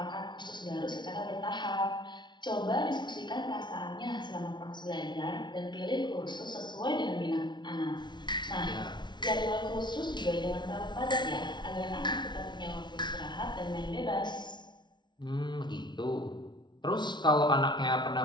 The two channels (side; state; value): right; late; 0.21 ms